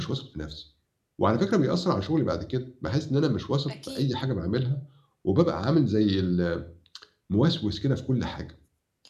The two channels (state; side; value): identical; both; correlation 1.00